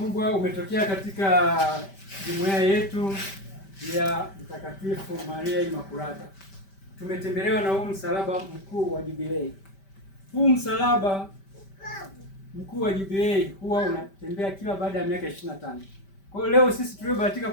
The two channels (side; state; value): right; late; 5.1 ms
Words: umetokea katika jumuiya yetu ya Mtakatifu Maria Imakulata. Tumetembelewa na huu msalaba mkuu wa jubilei. Huu msalaba mkuu wa jubilei huwa unatembea kila baada ya miaka 25. Kwa hiyo leo sisi tuliobahatika